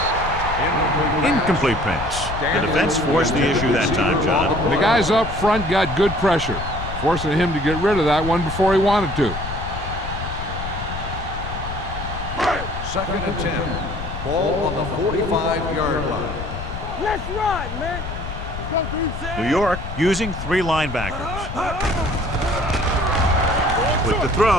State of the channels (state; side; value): noise; left; rumble, 7 dB below the sound